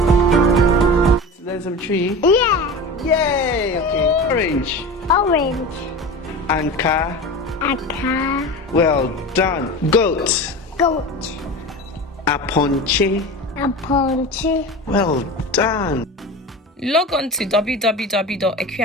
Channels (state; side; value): normal; both; correlation 0.30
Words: There's some tree. Yeah. Yay! Okay. Orange. Orange. And car. A car. Well done. Goat. Goat. A ponche. A ponche. Well done. Log on to